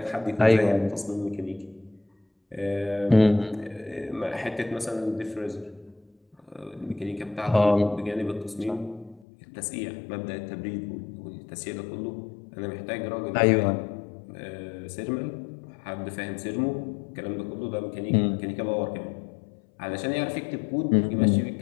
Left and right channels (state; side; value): drops out; right; at 9.2 s